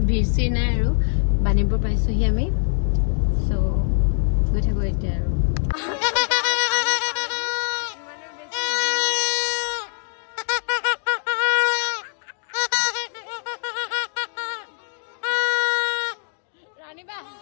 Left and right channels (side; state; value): right; silent; digital silence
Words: ভিৰ চিৰ নাই আৰু বাণীপুৰ পাইছোহি আমি চ' গৈ থাকো এতিয়া আৰু